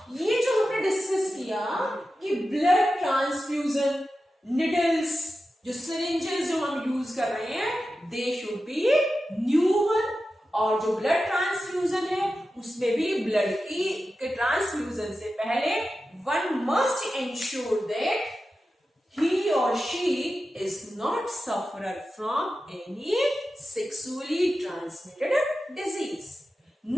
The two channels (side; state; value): both; normal; correlation 0.92